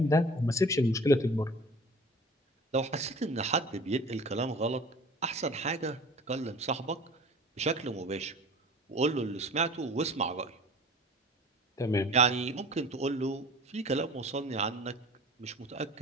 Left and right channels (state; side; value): normal; both; correlation 0.43